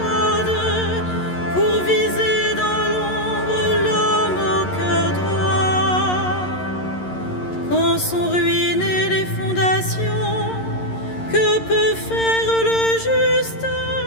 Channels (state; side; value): late; right; 11 ms